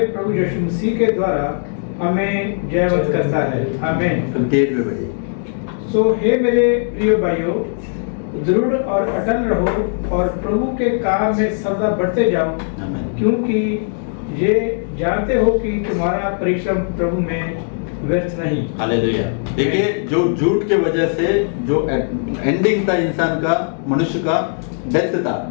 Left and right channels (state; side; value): silent; right; 66 dB below the other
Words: प्रभु यीशु मसीह के द्वारा हमें जयवंत करता है। आमीन। 58 में बढ़िए। सो हे मेरे प्रिय भाइयों, दृढ़ और अटल रहो और प्रभु के काम में सदा बढ़ते जाओ, क्योंकि ये जानते हो कि तुम्हारा परिश्रम प्रभु में व्यर्थ नहीं। हालेलुया। देखिए जो झूठ के वजह से जो एंडिंग था इंसान का, मनुष्य का डेथ था,